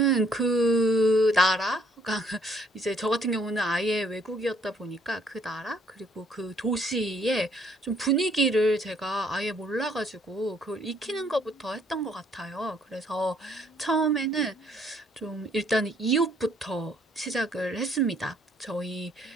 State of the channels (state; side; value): normal; both; correlation 0.65